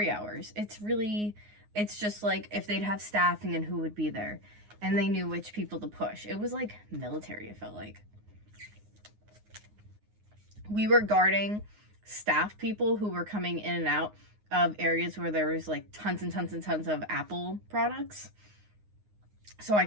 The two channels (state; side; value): late; left; 9.6 ms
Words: hours. It's just like if they'd have staffing and who would be there. And they knew which people to push. It was like military, it felt like. We were guarding staff people who were coming in and out of areas where there was like tons and tons and tons of Apple products. So I